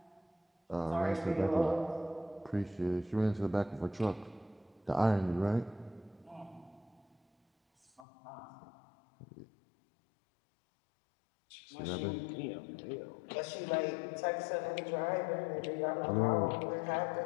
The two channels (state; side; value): drops out; right; at 8.1 s